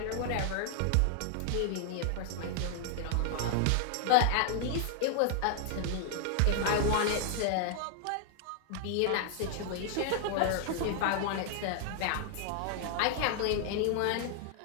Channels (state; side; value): different; both; correlation 0.00